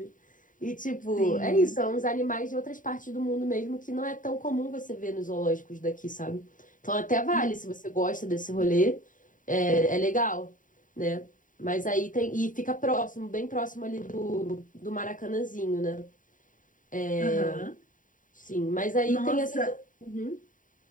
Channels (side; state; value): right; late; 0.38 ms